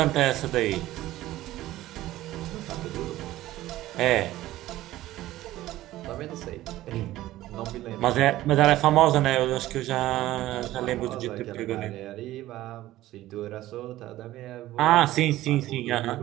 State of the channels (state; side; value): quieter; left; 15.5 dB